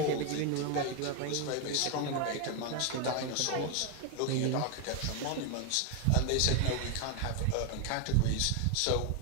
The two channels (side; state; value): both; different; correlation 0.01